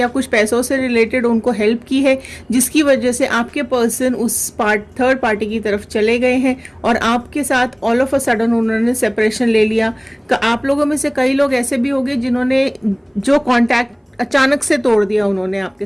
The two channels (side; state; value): both; identical; correlation 1.00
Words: कुछ पैसों से रिलेटेड उनको हेल्प की है, जिसकी वजह से आपके पर्सन उस थर्ड पार्टी की तरफ चले गए हैं और आपके साथ ऑल ऑफ अ सडन उन्होंने सेपरेशन ले लिया। आप लोगों में से कई लोग ऐसे भी होंगे जिन्होंने जो कांटेक्ट अचानक से तोड़ दिया, उन्होंने